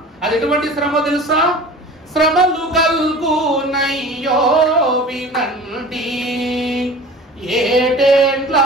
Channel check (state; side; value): normal; both; correlation 0.40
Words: అది ఎటువంటి శ్రమ తెలుసా? శ్రమలు కల్గునయ్యో వినండి, ఏటేండ్ల